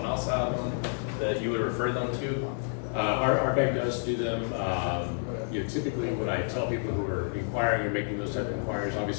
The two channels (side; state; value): right; silent; 58 dB below the other